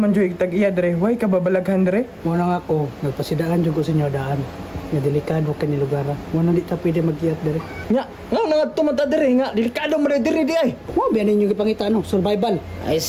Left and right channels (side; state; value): both; identical; correlation 1.00